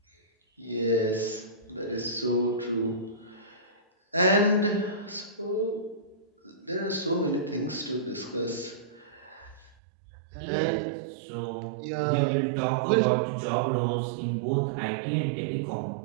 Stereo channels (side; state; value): left; drops out; at 9.8 s